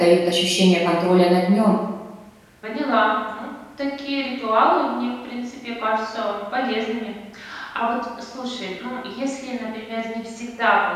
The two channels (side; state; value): both; identical; correlation 1.00